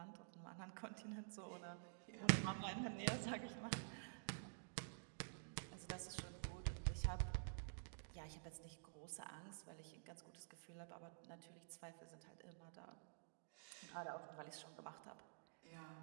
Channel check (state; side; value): silent; left; digital silence